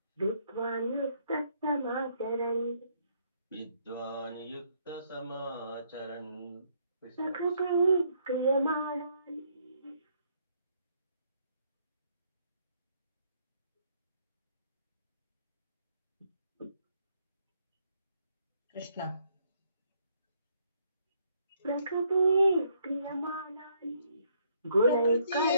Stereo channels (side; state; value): both; inverted; correlation -0.69